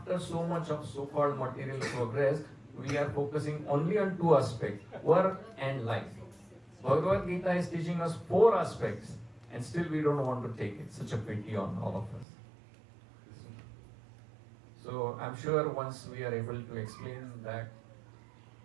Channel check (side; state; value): left; drops out; at 12.2 s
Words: so much of so-called material progress, we are focusing only on two aspects, work and life. Bhagavad Gita is teaching us four aspects, and still we don't want to take it. Such a pity on all of us. So I'm sure once we are able to explain that